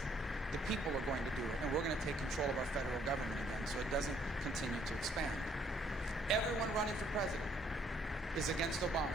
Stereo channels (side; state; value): both; normal; correlation 0.66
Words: The people are going to do it, and we're going to take control of our federal government again so it doesn't continue to expand. Everyone running for president is against